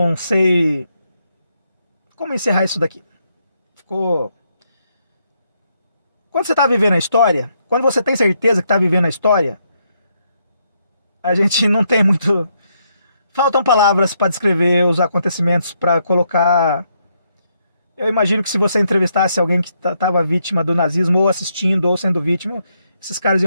sei como encerrar isso daqui. Ficou... Quando você está vivendo a história, quando você tem certeza que está vivendo a história, a gente não tem muito... Faltam palavras para descrever os acontecimentos, para colocar... Eu imagino que se você entrevistasse alguém que estava vítima do nazismo, ou assistindo, ou sendo vítima, esses caras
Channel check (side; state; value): both; inverted; correlation -0.77